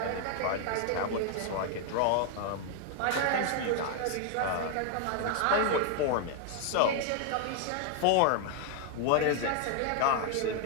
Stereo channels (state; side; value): different; both; correlation 0.00